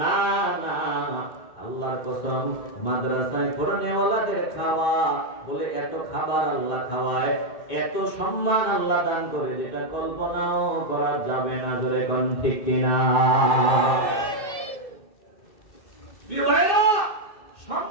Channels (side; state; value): right; late; 2.6 ms